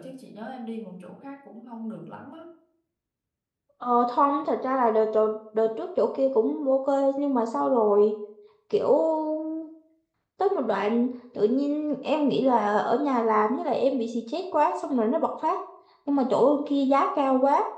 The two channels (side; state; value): both; identical; correlation 1.00